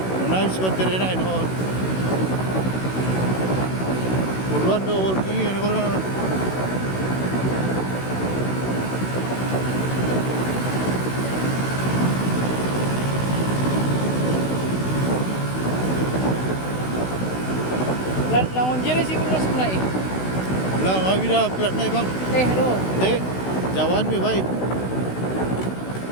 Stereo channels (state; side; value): late; right; 16 ms